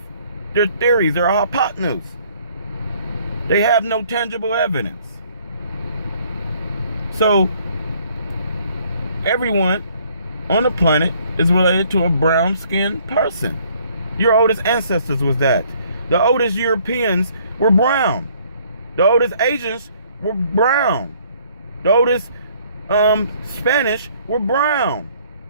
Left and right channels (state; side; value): inverted; both; correlation -0.62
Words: They're theories. They're hypotenuse. They have no tangible evidence. So, everyone on the planet is related to a brown-skinned person. Your oldest ancestors was that. The oldest Europeans were brown. The oldest Asians were brown. The oldest Spanish were brown.